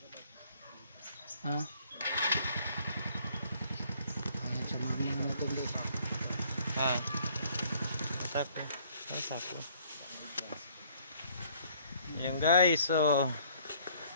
Ha? Ayan, samahan mo natin guys. Ha? Masako. Masako. Ayan guys, so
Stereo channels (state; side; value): inverted; both; correlation -0.61